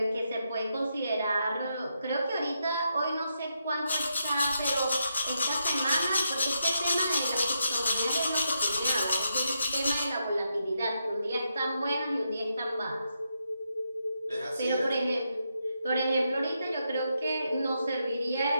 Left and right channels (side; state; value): both; inverted; correlation -0.82